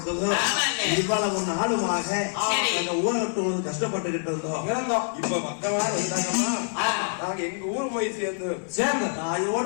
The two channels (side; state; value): right; silent; 61 dB below the other